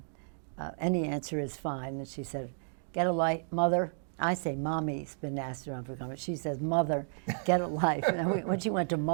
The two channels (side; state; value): left; silent; digital silence